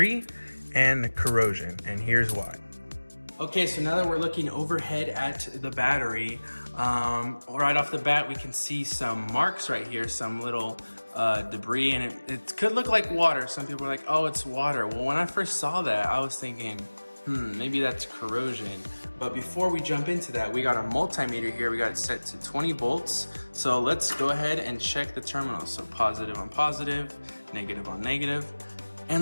and corrosion, and here's why. Okay, so now that we're looking overhead at the battery, right off the bat, we can see some marks right here, some little debris, and it could look like water. Some people are like, oh, it's water. Well, when I first saw that, I was thinking, maybe that's corrosion. But before we jump into that, we got a multimeter here. We got it set to 20 volts. So let's go ahead and check the terminals. So positive on positive, negative on negative.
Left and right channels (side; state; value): both; inverted; correlation -1.00